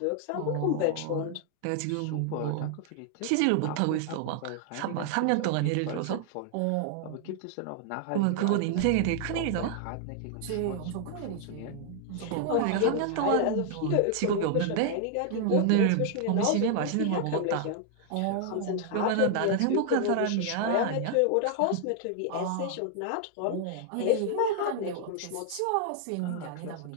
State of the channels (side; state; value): both; different; correlation 0.00